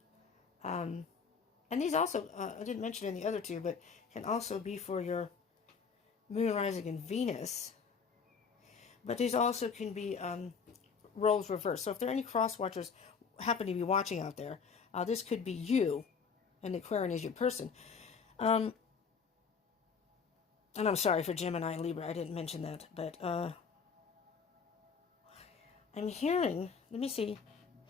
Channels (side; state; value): right; quieter; 5.9 dB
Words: and these also, I didn't mention in the other two, but can also be for your Moon, Rising, and Venus. But these also can be roles reversed. So if there are any cross watchers happen to be watching out there, this could be you, and Aquarian is your person. And I'm sorry for Gemini and Libra, I didn't mention that, but I'm hearing, let me see,